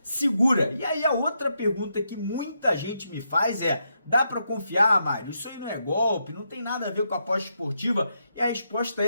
segura. E aí a outra pergunta que muita gente me faz é: dá para confiar, Mário? Isso aí não é golpe, não tem nada a ver com a aposta esportiva? E a resposta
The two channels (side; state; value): both; inverted; correlation -0.81